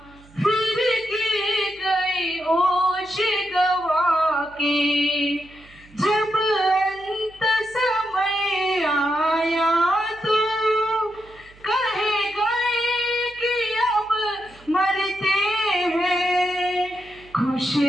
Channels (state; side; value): noise; right; hum, 25 dB below the sound